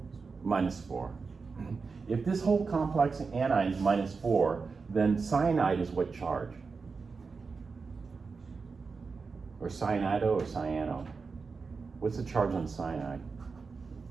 -4. If this whole complex anion is -4, then cyanide is what charge? Or cyanido or cyano? What's the charge on cyanide?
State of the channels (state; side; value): quieter; left; 4.8 dB